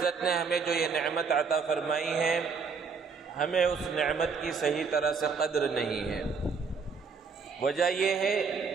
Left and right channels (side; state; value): left; quieter; 5.3 dB